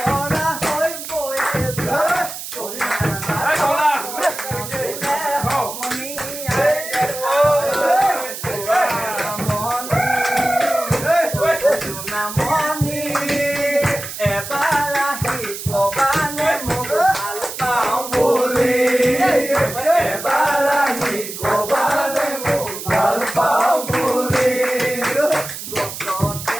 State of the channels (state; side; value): noise; right; hiss, 9 dB below the sound